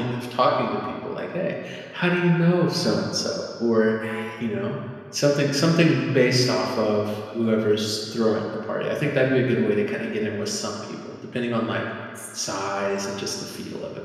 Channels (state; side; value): identical; both; correlation 1.00